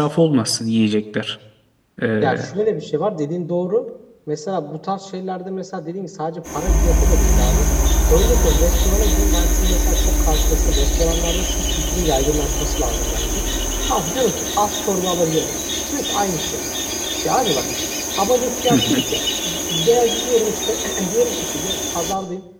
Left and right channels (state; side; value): identical; both; correlation 1.00